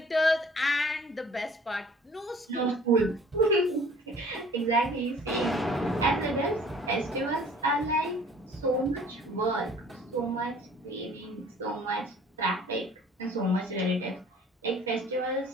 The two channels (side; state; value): both; normal; correlation 0.52